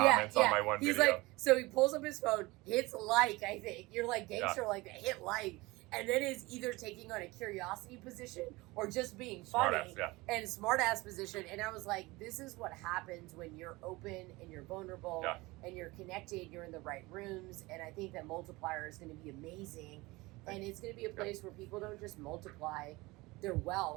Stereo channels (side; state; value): left; quieter; 21.9 dB